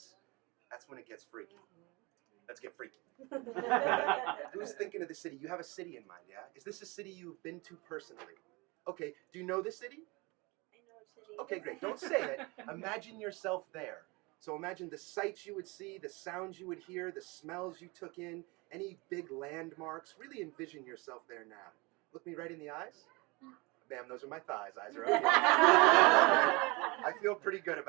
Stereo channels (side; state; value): left; quieter; 26.1 dB